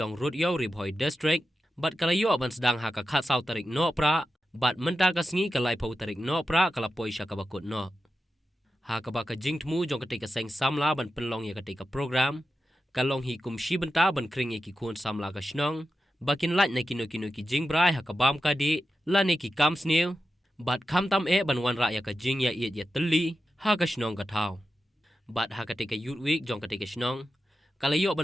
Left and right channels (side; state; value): both; normal; correlation 0.91